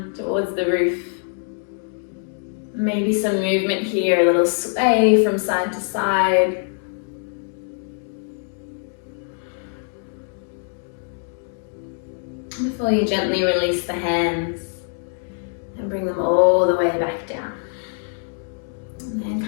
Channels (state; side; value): silent; right; 61 dB below the other